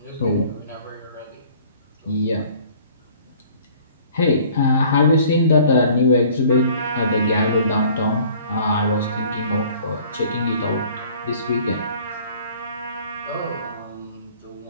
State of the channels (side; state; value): both; inverted; correlation -0.53